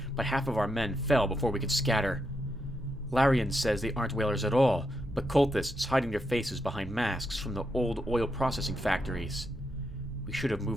but half of our men fell before we could scatter. Larian says they aren't whalers at all, but cultists hiding their faces behind masks from the old oil processing factories. We should have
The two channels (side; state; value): both; normal; correlation 0.82